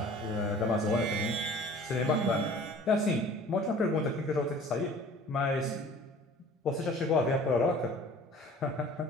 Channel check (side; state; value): both; normal; correlation 0.47